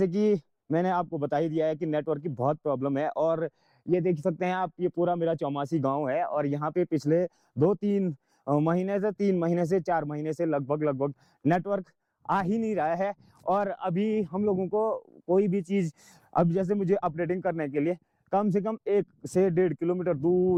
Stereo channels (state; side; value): identical; both; correlation 1.00